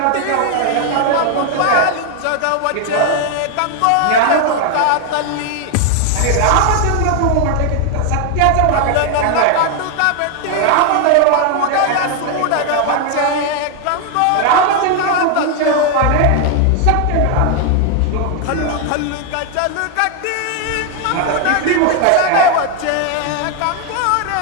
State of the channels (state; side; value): different; both; correlation 0.00